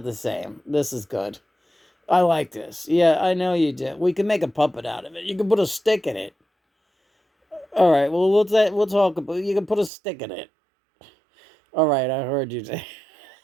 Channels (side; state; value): left; drops out; at 9.9 s